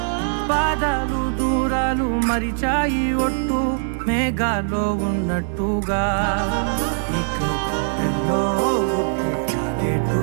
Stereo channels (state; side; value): silent; left; digital silence